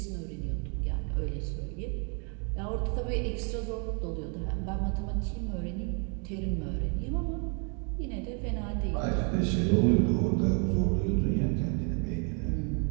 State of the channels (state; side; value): quieter; left; 38.9 dB